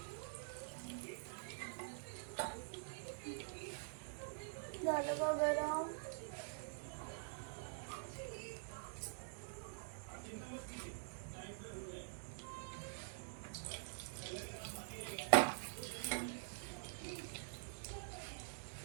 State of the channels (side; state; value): left; silent; digital silence